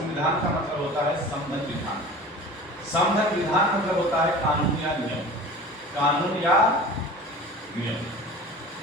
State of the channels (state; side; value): normal; both; correlation 0.39